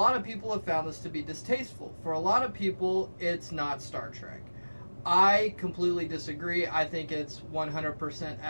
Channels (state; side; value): inverted; both; correlation -1.00